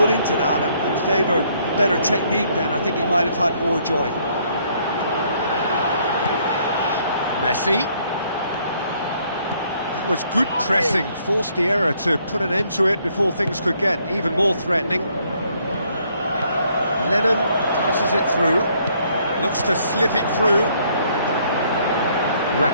into that and favour better technique, then I think he might have had more joy. Messi. That was good pressing, forced the error to put an end to it before things could get even more threatening. Lennon passes it through, looks to slip it through.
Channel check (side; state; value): both; inverted; correlation -0.67